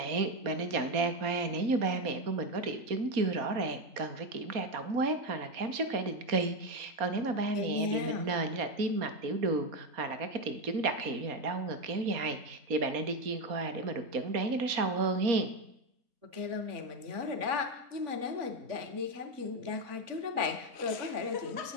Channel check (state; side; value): late; left; 4.2 ms